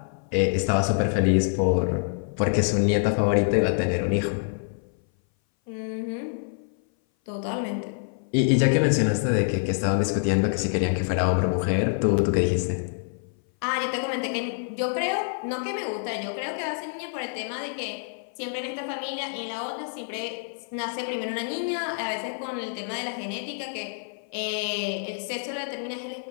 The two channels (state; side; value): silent; right; 58 dB below the other